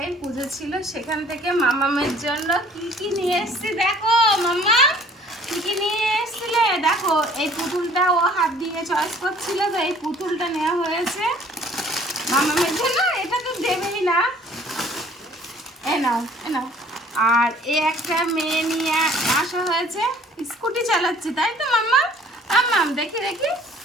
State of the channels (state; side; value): normal; both; correlation 0.55